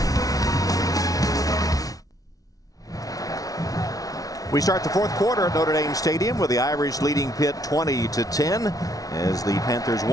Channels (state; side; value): late; right; 0.18 ms